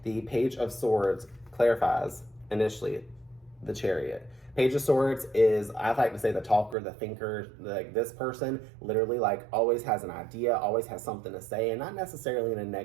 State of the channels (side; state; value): left; drops out; at 6.8 s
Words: the Page of Swords clarifies initially the Chariot. Page of Swords is, I like to say, the talker, the thinker. Like this person literally like always has an idea, always has something to say, and not necessarily in a